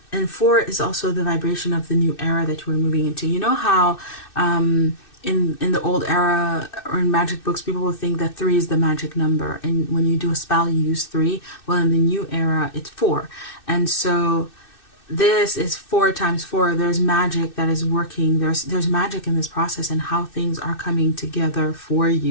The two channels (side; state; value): right; late; 2.6 ms